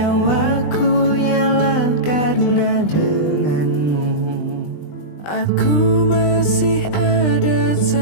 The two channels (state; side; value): late; right; 20 ms